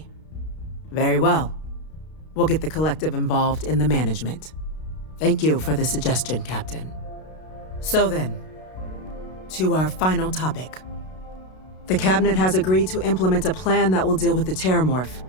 Very well. We'll get the Collective involved in the management. Thank you for the suggestion, Captain. So then, to our final topic. The Cabinet has agreed to implement a plan that will deal with the Terramorph,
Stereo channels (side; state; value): right; late; 32 ms